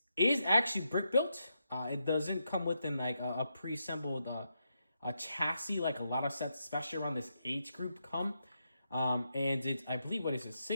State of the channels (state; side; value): inverted; both; correlation -0.83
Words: is actually brick built. It doesn't come within like a pre-assembled a chassis like a lot of sets, especially around this age group, come. And it's, I believe, what is it,